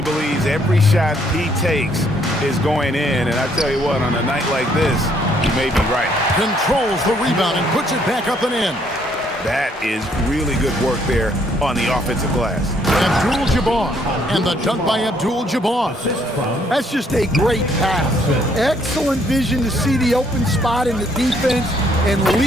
believes every shot he takes is going in, and I tell you what, on a night like this, he may be right. Controls the rebound and puts it back up and in. That is really good work there on the offensive glass. Abdul-Jabbar, and the dunk by Abdul-Jabbar. That's just a great pass. Excellent vision to see the open spot in the defense and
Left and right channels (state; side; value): normal; both; correlation 0.67